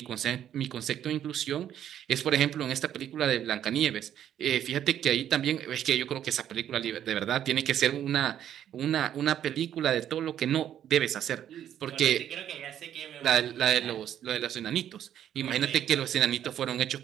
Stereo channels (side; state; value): left; quieter; 10.4 dB